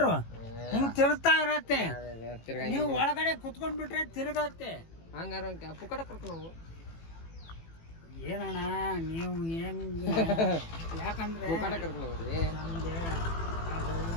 ಹಿಂಗ್ ತಿರುಗ್ತಾ ಇರತ್ತೆ. ನೀವು ಒಳಗಡೆ ಕುತ್ಕೊಂಡ್ಬಿಟ್ರೆ ತಿರುಗತ್ತೆ. ಹಂಗಾರ ಪುಕ್ಕಟ ಕರ್ಕೊಂಡು ಹೋಗು. ಏನಣ್ಣ ನೀವು ಹೆಂಗ್? ಯಾಕಂದ್ರೆ ಪುಕ್ಕಟ ಕರ್ಕೊಂಡು ಹೋಗ್ರಿ. ನಮ್ಗೆ ಅದು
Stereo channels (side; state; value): right; late; 18 ms